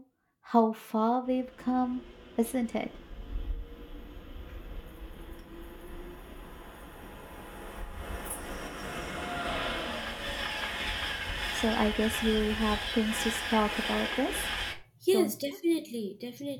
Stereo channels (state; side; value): identical; both; correlation 1.00